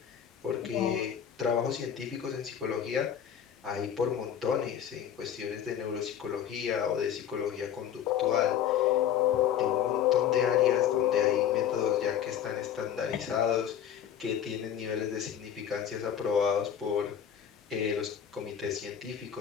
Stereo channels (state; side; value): quieter; right; 9.4 dB